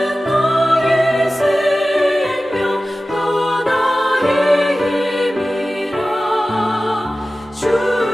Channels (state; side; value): normal; both; correlation 0.96